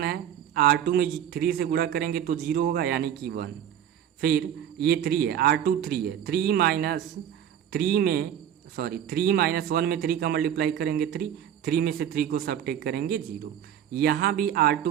है, R2 में 3 से गुणा करेंगे तो 0 होगा यानी कि 1। फिर ये 3 है, R2 3 है, 3 माइनस 1 में 3 का मल्टीप्लाई करेंगे 3 में से 3 को सब्ट्रैक्ट करेंगे 0। यहाँ भी R2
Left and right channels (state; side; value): quieter; left; 9.9 dB